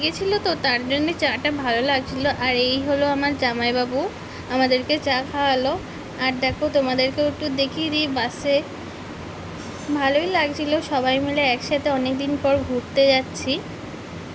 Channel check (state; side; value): identical; both; correlation 1.00